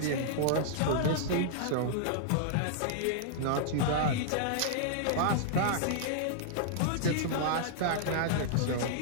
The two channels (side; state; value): both; different; correlation -0.01